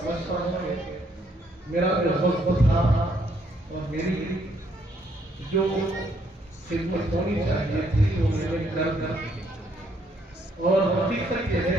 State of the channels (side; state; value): both; normal; correlation 0.70